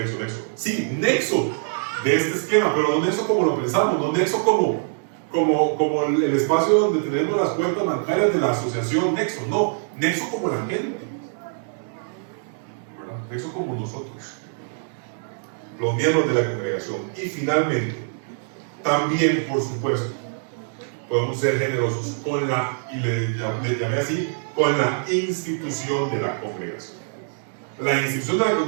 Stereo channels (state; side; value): silent; left; digital silence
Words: Sí, nexo de este esquema, pero no nexo como lo pensamos, no nexo como el espacio donde tenemos las cuentas bancarias de la asociación Nexo, no, Nexo como la gente, ¿verdad? Nexo como nosotros, los miembros de la congregación. Y finalmente, también, por supuesto, podemos ser generosos con y le llamé así, con la institución de la congregación. La institución de la